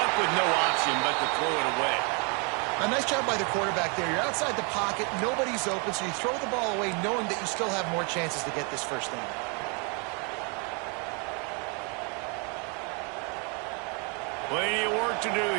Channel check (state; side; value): quieter; left; 34.9 dB